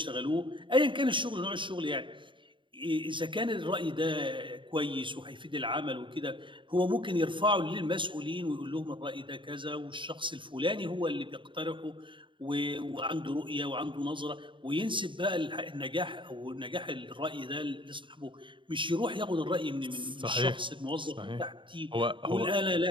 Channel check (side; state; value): left; late; 0.24 ms